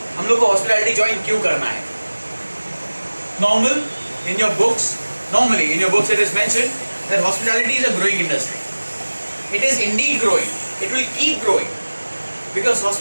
हम लोग को hospitality join क्यों करना है? Normally in your books it is mentioned that hospitality is a growing industry. It is indeed growing. It will keep growing. Because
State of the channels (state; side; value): inverted; both; correlation -1.00